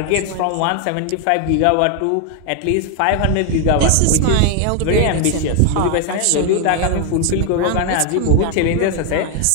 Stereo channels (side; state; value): both; different; correlation 0.01